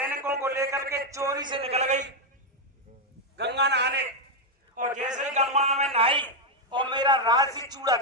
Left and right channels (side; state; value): both; normal; correlation 0.02